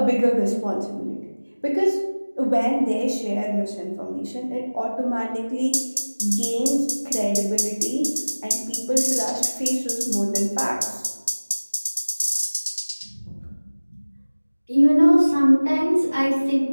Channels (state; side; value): inverted; both; correlation -1.00